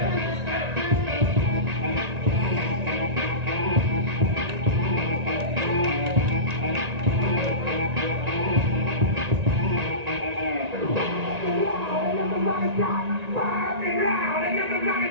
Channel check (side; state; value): left; late; 1.9 ms